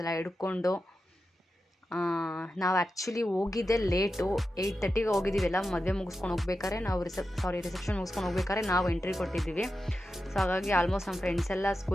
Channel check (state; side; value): normal; both; correlation 0.90